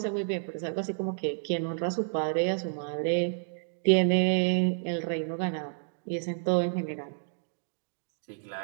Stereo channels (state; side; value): silent; left; digital silence